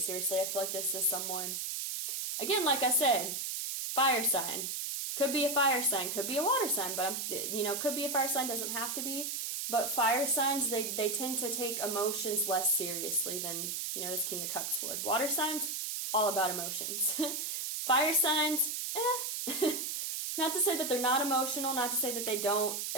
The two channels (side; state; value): right; noise; hiss, 3 dB below the sound